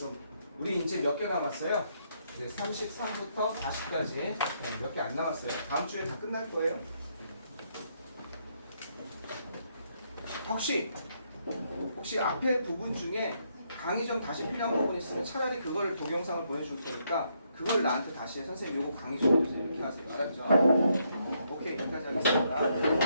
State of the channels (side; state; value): both; inverted; correlation -0.75